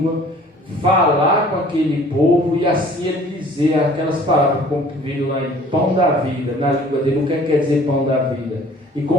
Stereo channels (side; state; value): both; normal; correlation 0.51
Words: falar com aquele povo e assim ele dizer aquelas palavras, como veio lá em pão da vida, na língua dele, o que quer dizer pão da vida? E